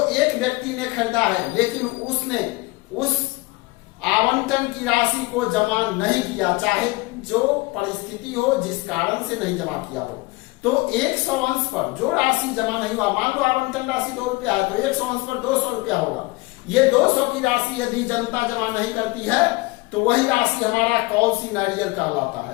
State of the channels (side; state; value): right; quieter; 23.3 dB